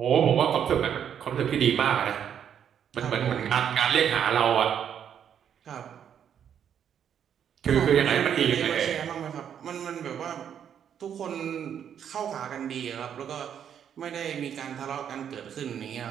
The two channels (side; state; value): left; quieter; 8.7 dB